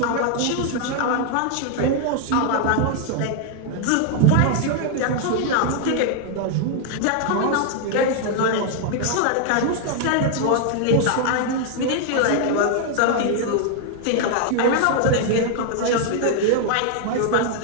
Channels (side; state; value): both; different; correlation 0.00